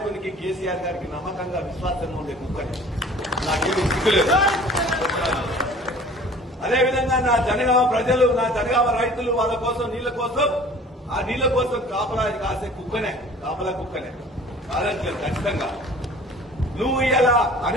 కేసీఆర్ గారికి నమ్మకంగా విశ్వాసంగా ఉండే కుక్కని, నాకేమీ సిగ్గులేదు. అదేవిధంగా నా జనగామ ప్రజలు, నా జనగామ రైతులు వాళ్ళ కోసం, నీళ్ల కోసం, ఆ నీళ్ల కోసం కాపలా కాసే కుక్కనే, కాపలా కుక్కనే కాదని ఖచ్చితంగా. నువ్వు ఇలా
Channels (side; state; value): both; normal; correlation 0.47